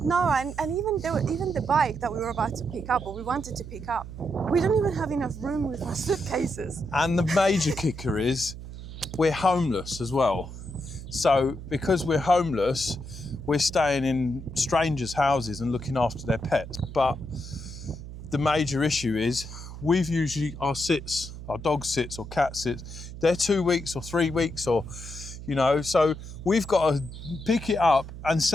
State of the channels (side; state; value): right; noise; hum, 11 dB below the sound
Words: No, and even the bike that we were about to pick up, or we wanted to pick up, we don't even have enough room with our suitcases. And the major kicker is we're homeless as well. So because we're homeless, we're staying in strangers' houses and looking after their pets. But the major issue is we've usually our dog sits or cat sits, they're 2 weeks or 3 weeks or, you know, so we've got to pick it up and